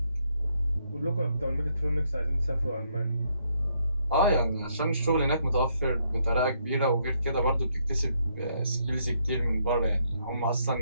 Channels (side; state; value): both; inverted; correlation -0.73